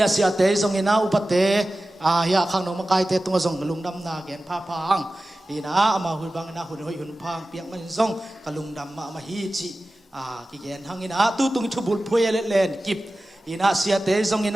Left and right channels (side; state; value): both; normal; correlation 0.95